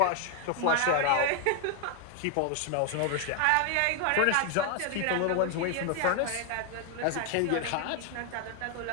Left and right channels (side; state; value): both; different; correlation 0.00